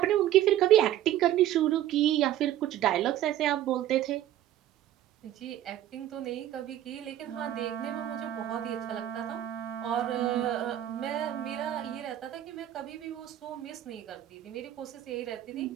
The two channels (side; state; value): left; quieter; 12.3 dB